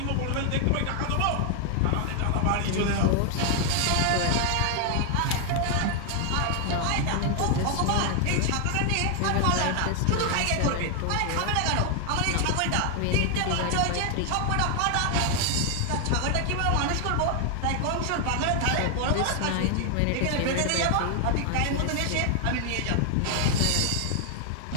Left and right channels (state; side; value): different; both; correlation 0.00